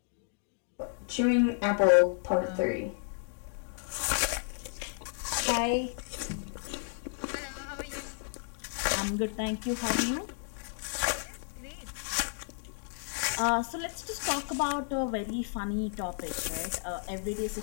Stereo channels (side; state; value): right; silent; 56 dB below the other